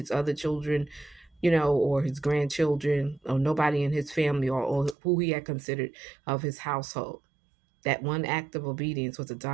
other children, or his grandchildren, or nobody in his family, or who he had considered of his household. That one act of obedience was a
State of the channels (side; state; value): left; drops out; at 5.0 s